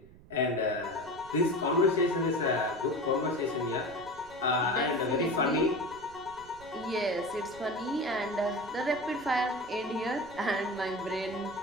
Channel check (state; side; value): noise; right; rumble, 22 dB below the sound